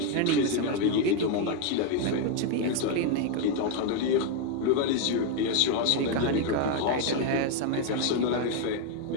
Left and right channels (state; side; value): different; both; correlation 0.01